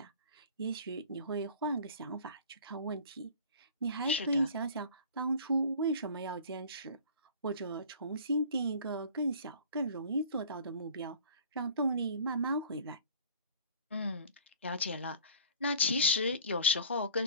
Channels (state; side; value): inverted; both; correlation -0.45